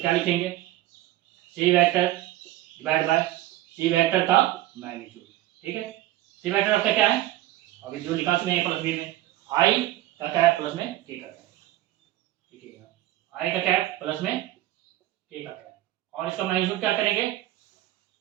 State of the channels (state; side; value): quieter; left; 15.5 dB